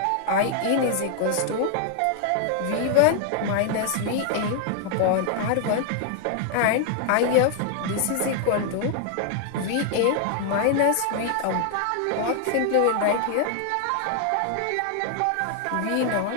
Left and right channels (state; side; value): different; both; correlation 0.00